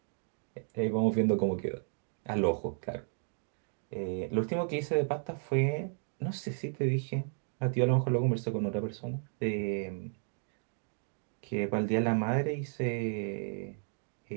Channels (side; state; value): left; silent; digital silence